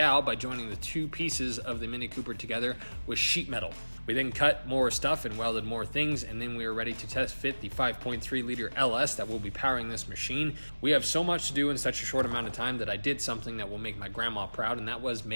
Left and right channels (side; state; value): both; inverted; correlation -1.00